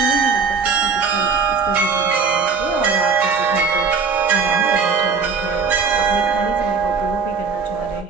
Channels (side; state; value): left; quieter; 5.3 dB